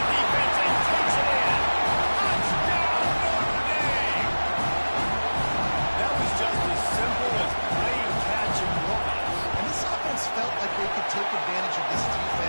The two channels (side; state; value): both; inverted; correlation -1.00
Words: defense and takes it in. Touchdown, Notre Dame. That was just as simple as playing catch and walk. And this offense felt like they could take advantage of this